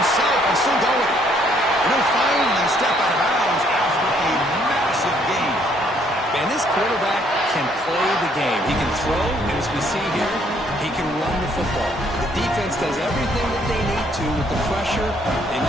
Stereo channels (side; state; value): both; normal; correlation 0.66